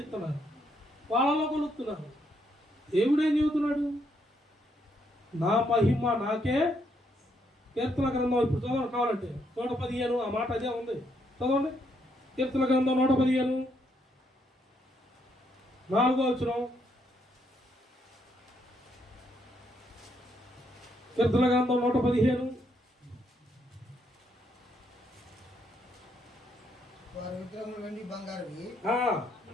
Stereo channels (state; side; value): normal; both; correlation 0.75